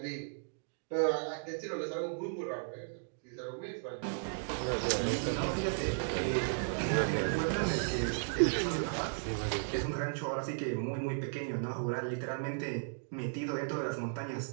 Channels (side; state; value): left; silent; digital silence